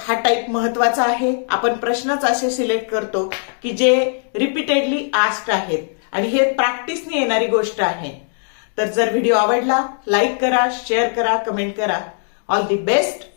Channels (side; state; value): right; silent; digital silence